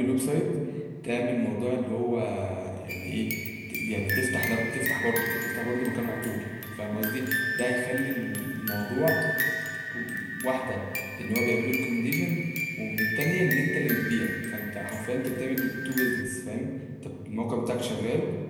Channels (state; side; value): identical; both; correlation 1.00